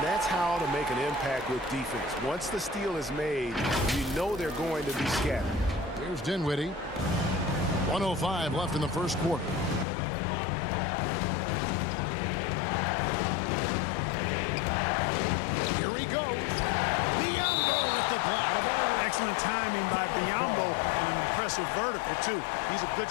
that's how to make an impact with defense. Once the steal is made, you know they're going to be scattered. Here's Dinwiddie. 1:05 left in the first quarter. Here he goes. Biombo with the block. Excellent timing by Biombo and an impressive vertical, too. He's a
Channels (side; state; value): right; drops out; at 9.9 s